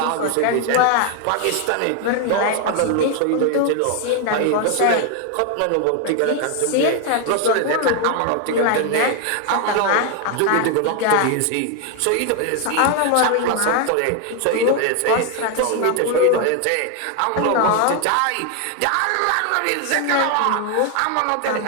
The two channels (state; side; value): different; both; correlation 0.01